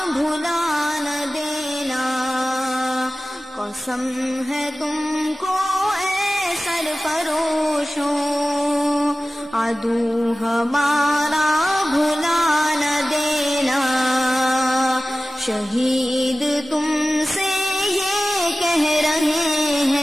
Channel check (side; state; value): both; normal; correlation 0.97